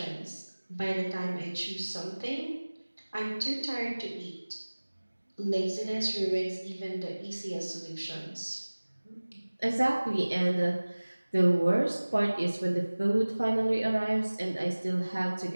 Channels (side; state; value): both; inverted; correlation -1.00